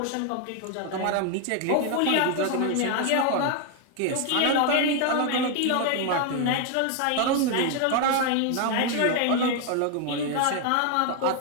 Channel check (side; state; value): both; different; correlation 0.00